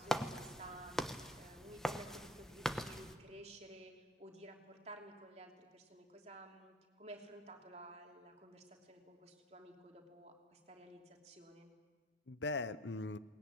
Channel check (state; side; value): normal; both; correlation 0.55